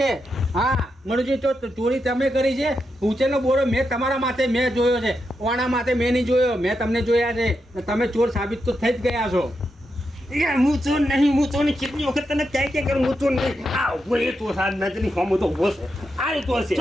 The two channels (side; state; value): both; normal; correlation 0.85